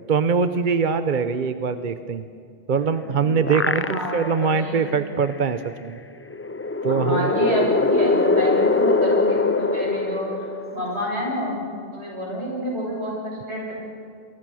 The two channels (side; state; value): both; normal; correlation 0.00